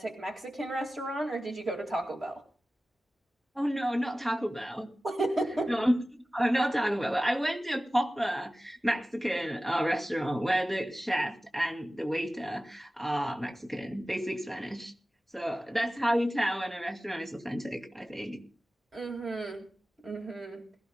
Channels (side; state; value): both; normal; correlation 0.96